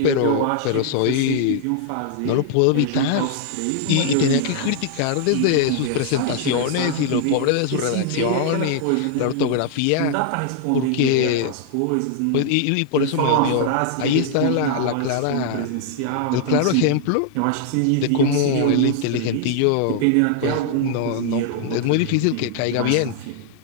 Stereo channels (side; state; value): both; different; correlation 0.00